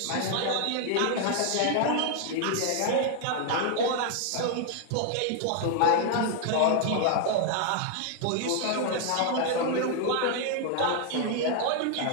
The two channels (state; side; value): different; both; correlation 0.00